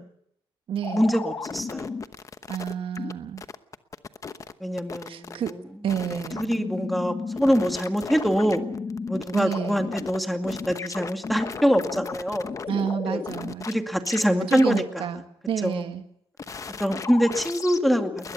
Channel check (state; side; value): normal; both; correlation 0.90